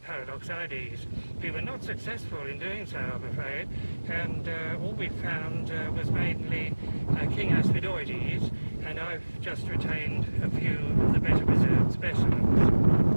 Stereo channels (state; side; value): inverted; both; correlation -1.00